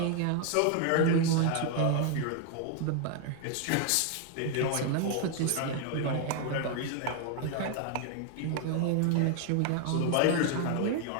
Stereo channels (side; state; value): both; different; correlation 0.00